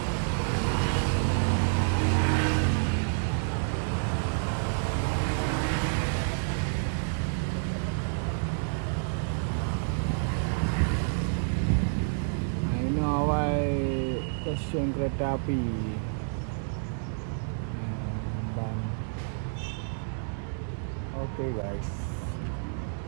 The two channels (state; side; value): silent; left; digital silence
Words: Stasiun kereta api Ban. Oke guys,